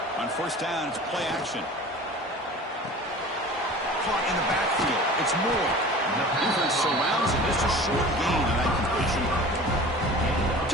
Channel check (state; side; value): normal; both; correlation 0.40